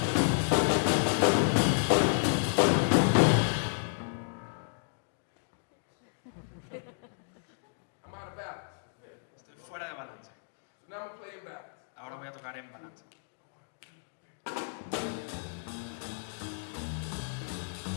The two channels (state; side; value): silent; right; digital silence